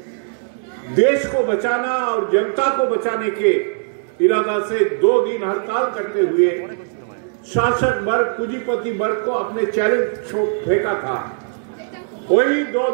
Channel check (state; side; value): silent; left; 66 dB below the other